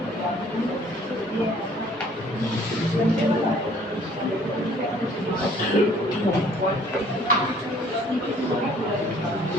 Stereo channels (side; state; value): both; normal; correlation 0.57